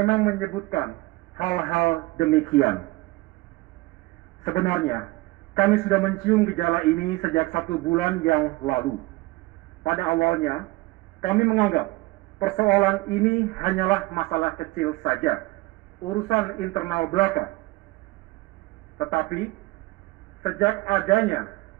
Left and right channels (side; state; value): left; quieter; 21.4 dB